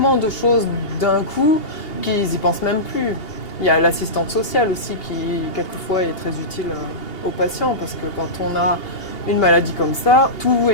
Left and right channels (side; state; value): right; late; 2.8 ms